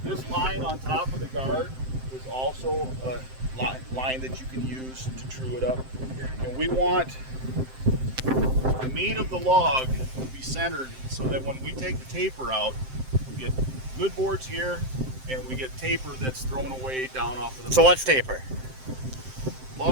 This line on top of the guard is also a line that you can use to true it up. And we want the meat of the log to be centered so that when we take the taper out, we get good boards here and we get taper that's thrown away down off of the So what's taper?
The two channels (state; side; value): late; left; 7.7 ms